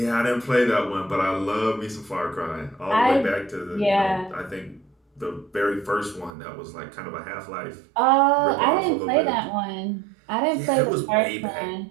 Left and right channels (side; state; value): left; drops out; at 6.3 s